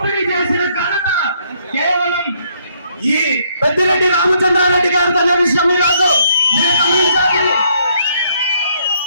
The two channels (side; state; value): both; inverted; correlation -0.69